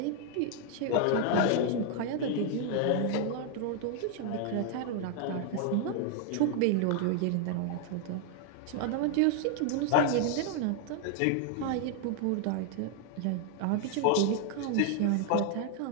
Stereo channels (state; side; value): different; both; correlation 0.00